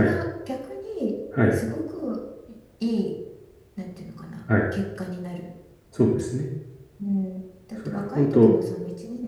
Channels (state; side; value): identical; both; correlation 1.00